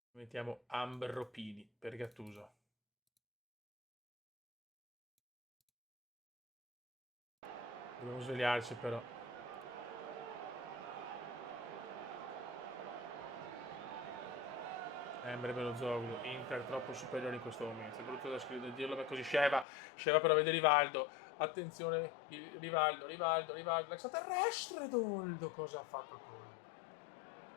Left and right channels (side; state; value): right; drops out; at 19.7 s